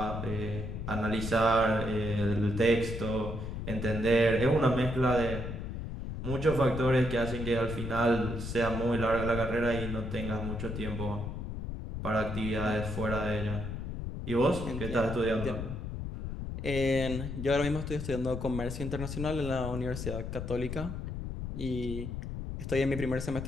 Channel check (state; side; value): noise; left; rumble, 5 dB below the sound